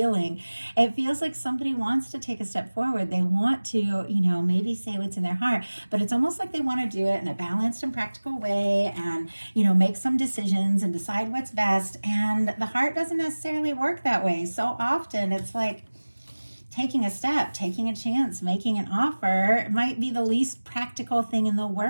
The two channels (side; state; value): both; inverted; correlation -1.00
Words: It feels like somebody wants to take a step forward. They want to, maybe say what's in their heart, but it's almost like they want to do it in a balanced and practical way, and, make some decisions and decide what's best. And the heart doesn't necessarily work that way. So often it's like taking a step, taking a chance, making an offer. It might be the least practical thing in the